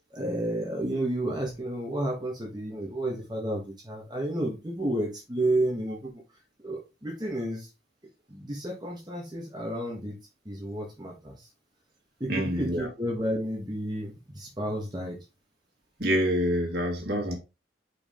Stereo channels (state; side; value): normal; both; correlation 0.71